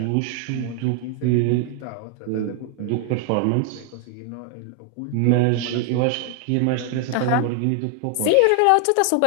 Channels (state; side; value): different; both; correlation 0.00